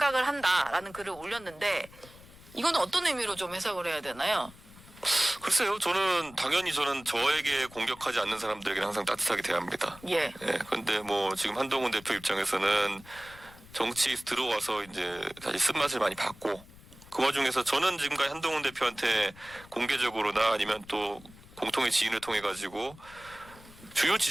한다라는 글을 올렸는데 이거는 어떤 의미로 좀 해석을 해야 되나요? 글쎄요, 당연히 저는 저에게 공격하지 않는 사람들에게 항상 따뜻하게 대합니다. 예. 예, 근데 뭐 지금 한동훈 대표 입장에서는 정치에 들어와서 이제 다시 쓴맛을 많이 봤고 그 와중에서 저는 지금까지 한동훈 대표한테 공개적으로나 아니면 또 공통의 지인을 통해 가지고 주요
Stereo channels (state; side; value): noise; left; rumble, 21 dB below the sound